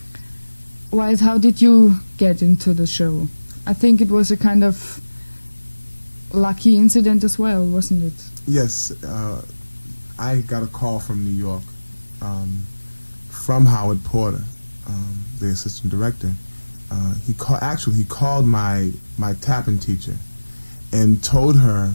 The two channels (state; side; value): inverted; both; correlation -1.00